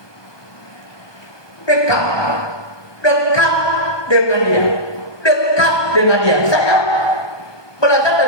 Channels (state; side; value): late; right; 1.2 ms